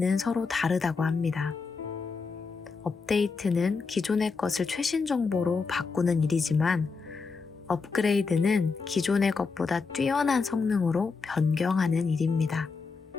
서로 다르다고 합니다. 업데이트는 기존의 것을 최신 정보로 바꾸는 일이지만 업그레이드는 기존의 것보다 뛰어난 성능으로 변경하는 일입니다.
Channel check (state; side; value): quieter; right; 4.7 dB